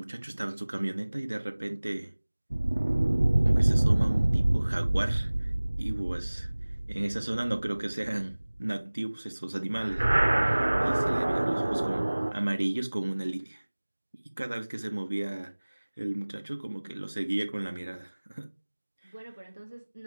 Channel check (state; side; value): inverted; both; correlation -1.00